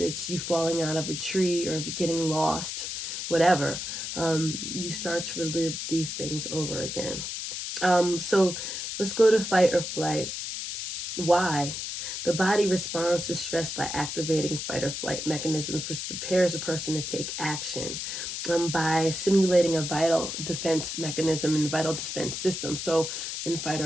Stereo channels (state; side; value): noise; left; hiss, 5 dB below the sound